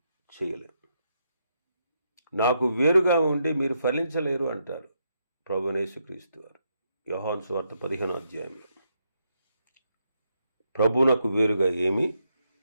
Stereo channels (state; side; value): inverted; both; correlation -0.79